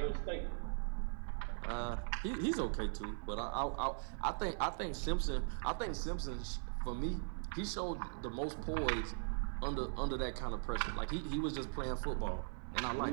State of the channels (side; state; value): left; silent; 51 dB below the other